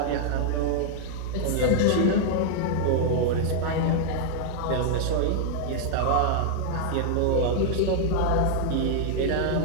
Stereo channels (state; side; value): different; both; correlation -0.01